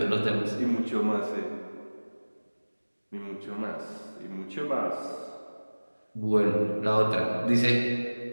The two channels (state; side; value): inverted; both; correlation -1.00